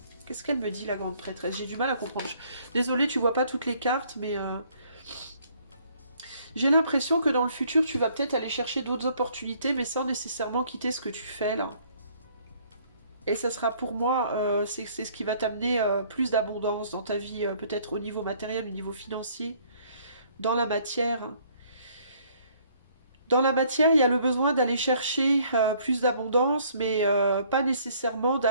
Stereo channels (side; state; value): both; inverted; correlation -0.61